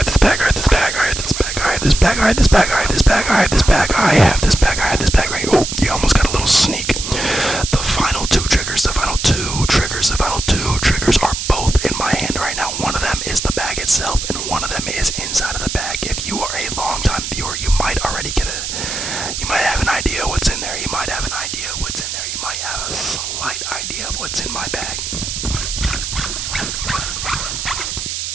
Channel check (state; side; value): noise; right; hiss, 5 dB below the sound